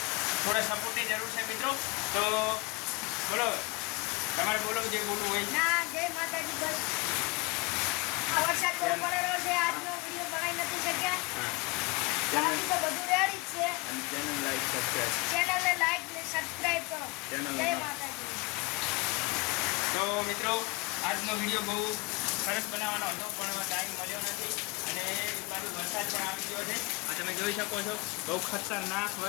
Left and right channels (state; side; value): quieter; right; 26.8 dB